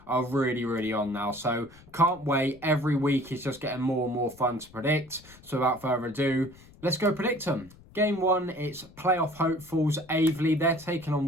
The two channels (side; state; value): left; noise; rumble, 23 dB below the sound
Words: are really on now. So can't wait. Every week is just getting more and more fun to predict. So without further ado, let's go predict them. Game one, it's playoff hopefuls Aveley. They're taking